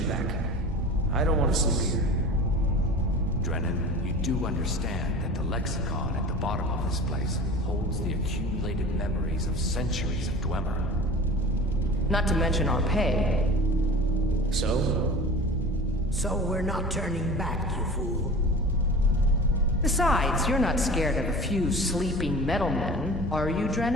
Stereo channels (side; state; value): both; normal; correlation 0.38